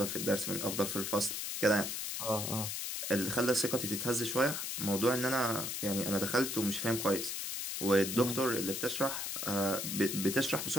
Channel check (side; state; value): left; noise; hiss, 3 dB below the sound